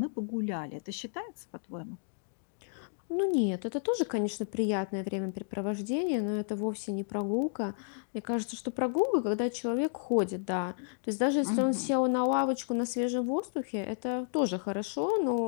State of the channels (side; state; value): right; silent; digital silence